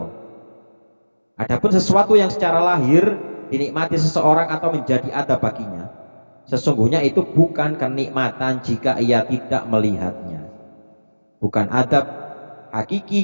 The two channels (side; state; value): both; inverted; correlation -1.00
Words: Adapun sesuatu yang secara lahir dinikmati seseorang atau menjadi adab baginya, sesungguhnya itu bukan kenikmatan jika ia tidak melihatnya, bukan adab hakiki